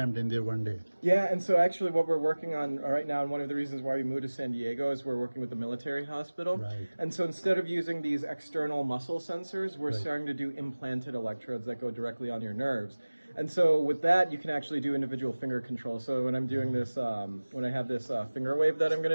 in there one day. Yeah, and so actually what we're working on right now, and one of the reasons why we moved to San Diego, is we're working with the military hospital. Right. And so instead of using these external muscle sensors, we're starting to do implanted electrodes that go directly on your nerves. And so with that, you can actually do individual finger control. So when I'm doing this, when I have this finger wave that I'm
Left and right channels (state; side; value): inverted; both; correlation -1.00